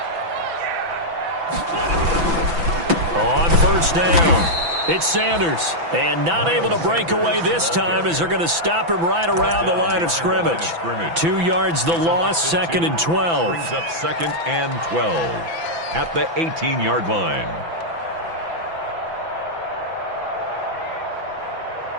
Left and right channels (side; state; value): left; late; 6.0 ms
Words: On 1st down. It's Sanders, and not able to break away this time as they're going to stop him right around the line of scrimmage. 2 yards the loss, 2nd and 12. Brings up 2nd and 12 at the 18-yard line.